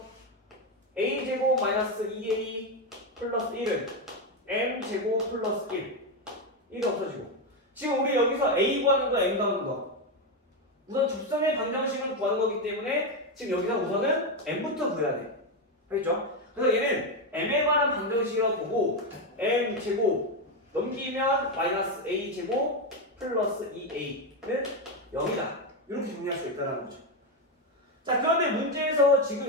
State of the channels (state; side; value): normal; both; correlation 0.08